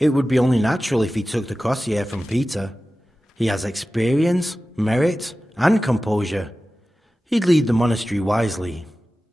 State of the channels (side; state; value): both; normal; correlation 0.95